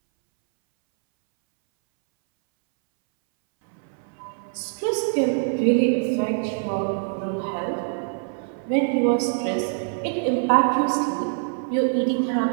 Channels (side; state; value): left; silent; 63 dB below the other